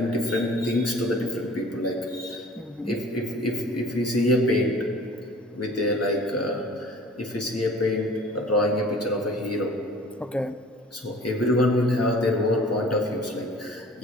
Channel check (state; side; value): normal; both; correlation 0.47